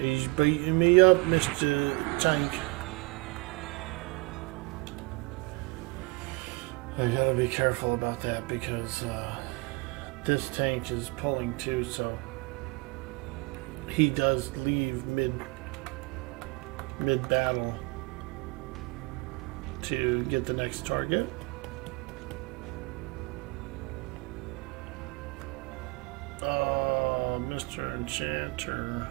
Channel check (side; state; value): left; quieter; 27.4 dB